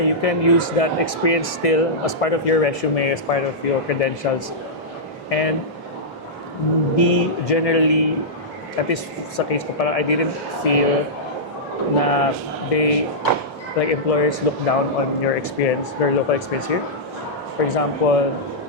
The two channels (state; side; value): normal; both; correlation -0.12